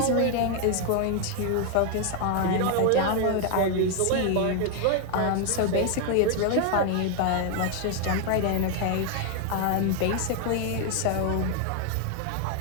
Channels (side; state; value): both; different; correlation 0.00